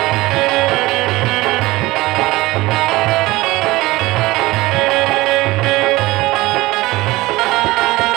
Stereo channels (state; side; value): quieter; left; 19.6 dB